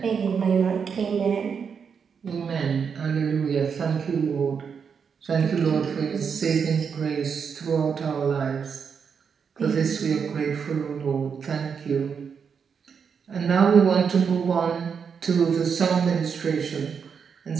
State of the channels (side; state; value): left; quieter; 6.5 dB